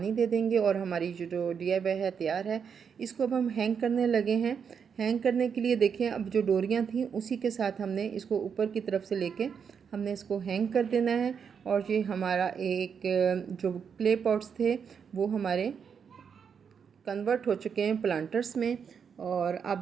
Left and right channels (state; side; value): quieter; left; 6.8 dB